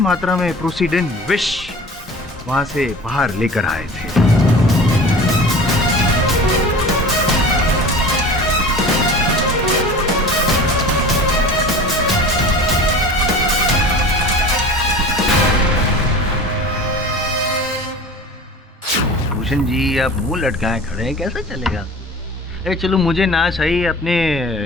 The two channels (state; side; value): normal; both; correlation 0.39